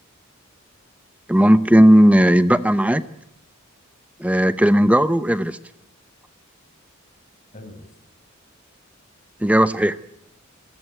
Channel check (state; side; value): normal; both; correlation 0.96